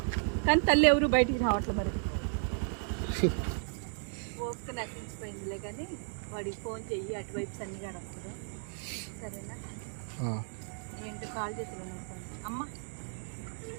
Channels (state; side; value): silent; left; 55 dB below the other